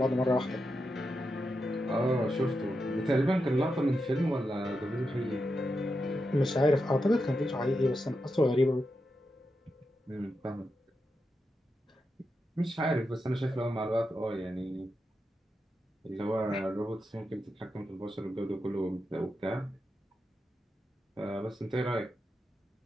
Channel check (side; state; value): both; normal; correlation 0.87